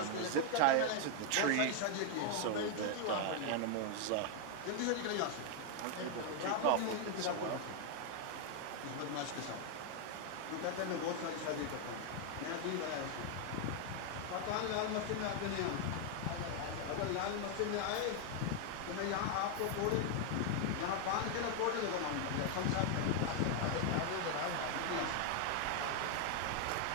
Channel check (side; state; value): both; different; correlation 0.00